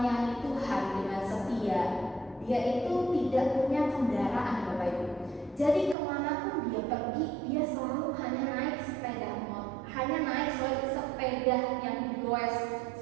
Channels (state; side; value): drops out; left; at 6.0 s